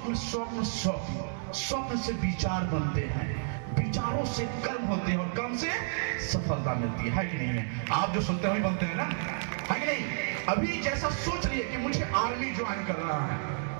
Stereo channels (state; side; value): silent; left; digital silence